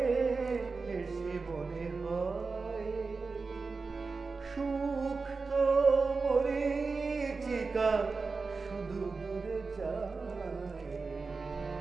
এসে মনে হয়, সুখ তো মরীচিকা শুধু দূরে যায়।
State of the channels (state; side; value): quieter; left; 4.3 dB